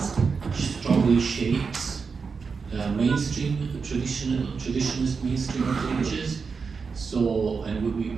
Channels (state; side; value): quieter; left; 5.2 dB